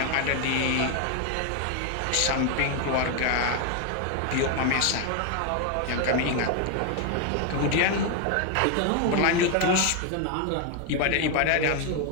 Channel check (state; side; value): different; both; correlation 0.01